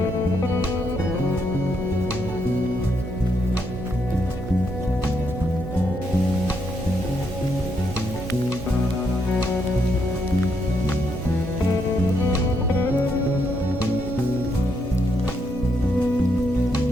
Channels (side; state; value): right; noise; hum, 9 dB below the sound